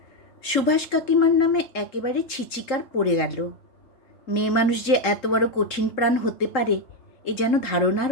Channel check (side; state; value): right; late; 3.7 ms